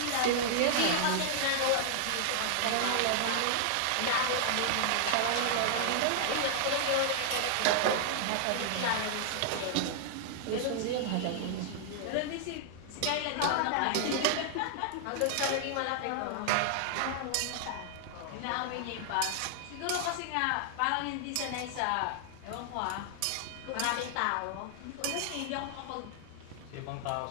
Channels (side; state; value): both; different; correlation -0.01